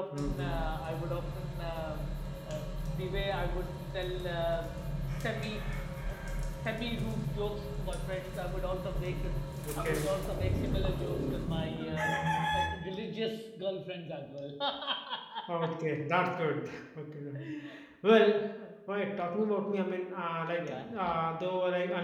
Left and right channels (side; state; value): both; identical; correlation 1.00